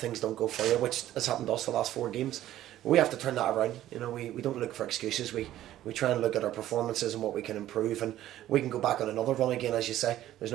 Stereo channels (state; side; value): quieter; left; 13.3 dB